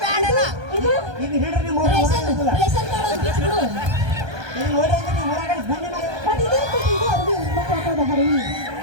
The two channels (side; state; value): left; late; 1.2 ms